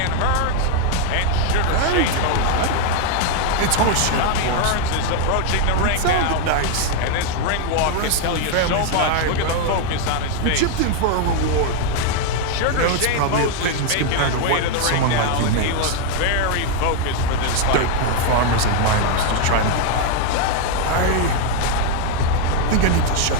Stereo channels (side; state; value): both; different; correlation 0.00